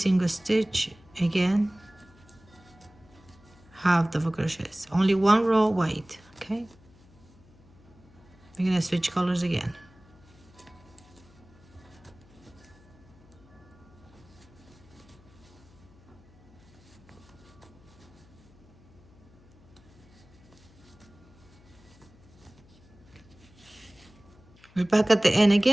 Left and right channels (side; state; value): left; noise; hum, 26 dB below the sound